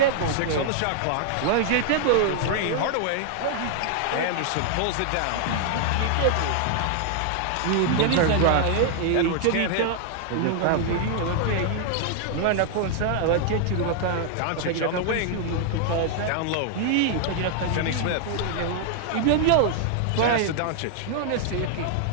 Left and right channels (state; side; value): different; both; correlation 0.00